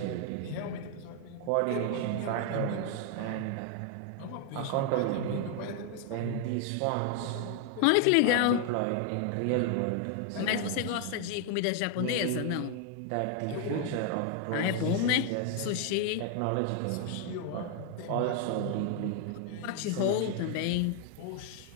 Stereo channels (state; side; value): different; both; correlation 0.00